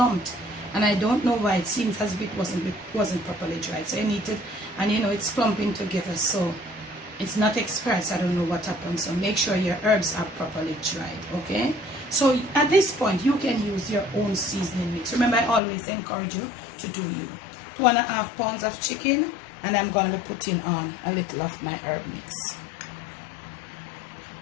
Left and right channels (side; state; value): right; drops out; at 15.6 s